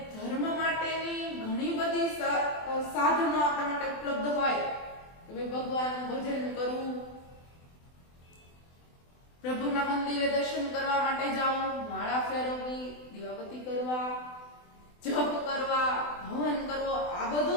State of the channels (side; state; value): right; late; 24 ms